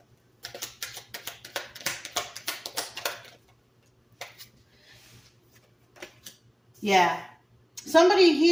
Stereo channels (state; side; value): identical; both; correlation 1.00